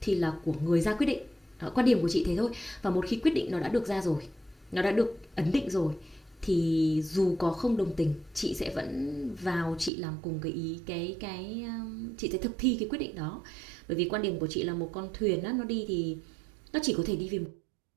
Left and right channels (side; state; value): left; drops out; at 9.9 s